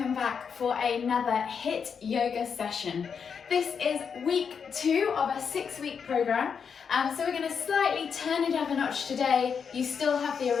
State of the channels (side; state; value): right; quieter; 6.5 dB